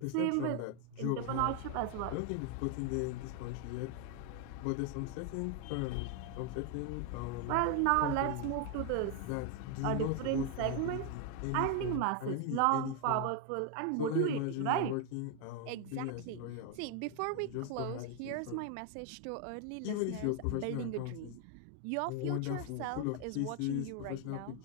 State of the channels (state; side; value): different; both; correlation 0.01